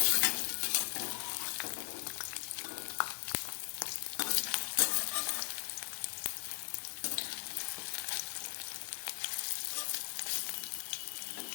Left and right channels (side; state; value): right; silent; digital silence